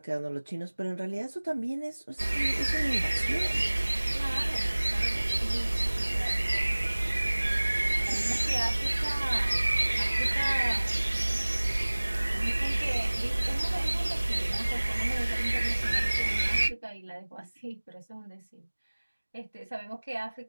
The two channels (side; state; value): both; inverted; correlation -1.00